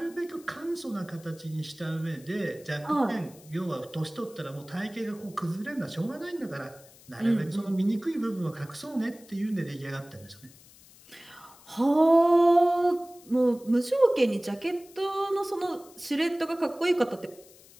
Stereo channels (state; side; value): noise; left; hiss, 24 dB below the sound